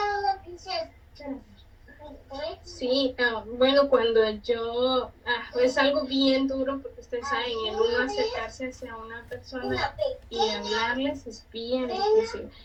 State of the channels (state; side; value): identical; both; correlation 1.00